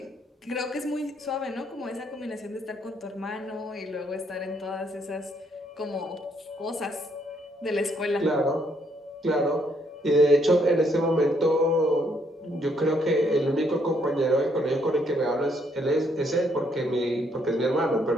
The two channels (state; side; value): normal; both; correlation 0.71